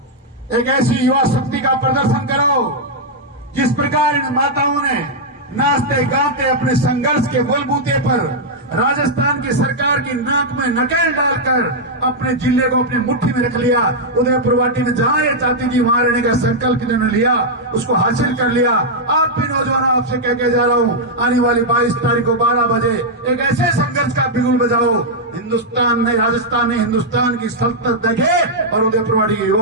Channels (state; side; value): normal; both; correlation -0.04